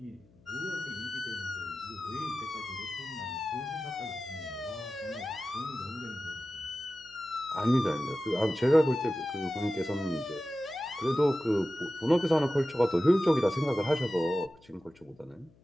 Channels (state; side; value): noise; left; hum, 29 dB below the sound